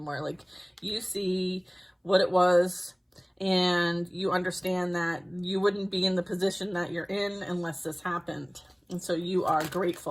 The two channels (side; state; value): both; identical; correlation 1.00